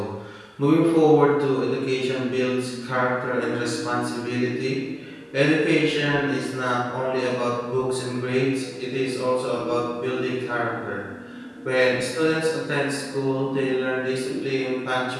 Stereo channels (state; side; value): identical; both; correlation 1.00